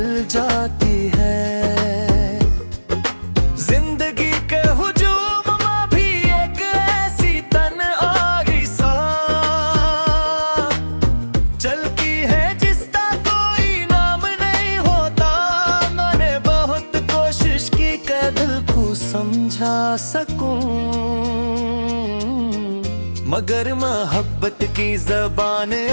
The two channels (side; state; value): both; inverted; correlation -1.00